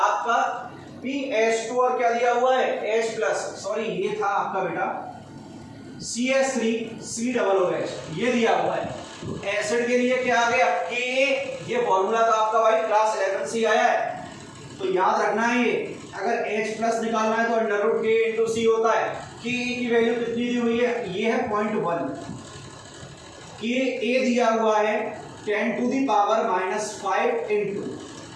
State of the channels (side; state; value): both; identical; correlation 1.00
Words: pH2 और क्या दिया हुआ है H+, सॉरी ये था आपका बेटा CH3COOH, ये दिया हुआ है। एसिड के लिए क्या आ गया Ka, ये फॉर्मूला था आपका भाई क्लास 11 से आया है, तो याद रखना है ये। अगर H+ निकालना है तो √Ka/C होता है। Ka की वैल्यू कितनी दी हुई है, ये है 0.1। Ka दिया हुआ है 10⁻⁻5 इंटू